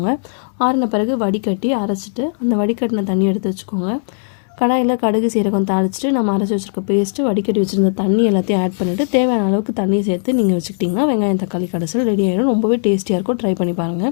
ஆறின பிறகு வடிகட்டி அரைச்சிட்டு அந்த வடிகட்டின தண்ணி எடுத்து வச்சுக்கோங்க. கடாயில் கடுகு சீரகம் தாளிச்சிட்டு நம்ம அரைச்சி வச்சுருக்க பேஸ்ட்டு, வடிகட்டி வச்சுருந்த தண்ணி எல்லாத்தையும் ஆட் பண்ணிவிட்டு தேவையான அளவுக்கு தண்ணியை சேர்த்து நீங்கள் வச்சுக்கிட்டிங்கன்னா வெங்காயம் தக்காளி கடைசல் ரெடி ஆகிடும். ரொம்பவே டேஸ்டியாக இருக்கும். ட்ரை பண்ணி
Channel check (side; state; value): right; silent; 68 dB below the other